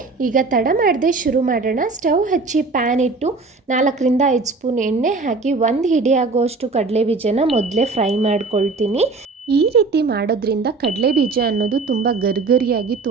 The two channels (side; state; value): left; quieter; 3.9 dB